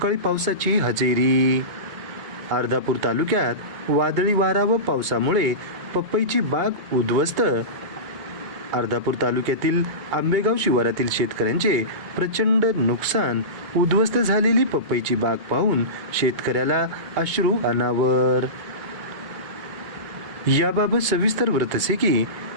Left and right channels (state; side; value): late; left; 2.2 ms